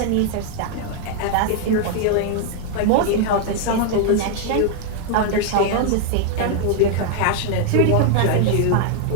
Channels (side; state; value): both; different; correlation 0.00